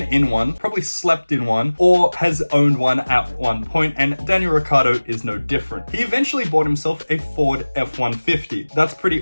in one, probably slept in one, or has owned one at one point, and Daniel Ricciardo is no different. He eventually bought himself a Ford F-150. That's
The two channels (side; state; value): both; inverted; correlation -1.00